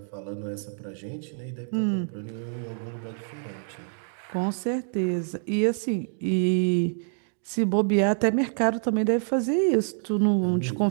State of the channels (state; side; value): silent; left; digital silence